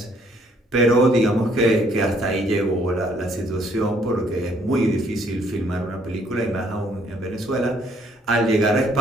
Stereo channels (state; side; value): normal; both; correlation 0.65